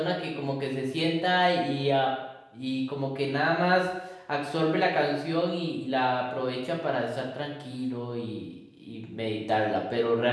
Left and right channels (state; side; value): identical; both; correlation 1.00